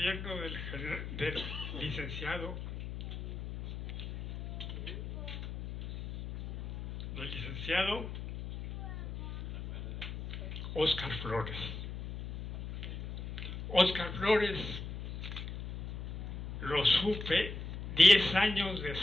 del licenciado Óscar Flores. Óscar Flores lo supe 10 años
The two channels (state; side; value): noise; left; hum, 8 dB below the sound